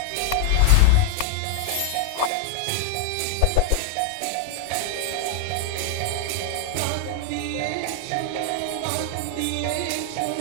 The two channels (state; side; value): different; both; correlation 0.00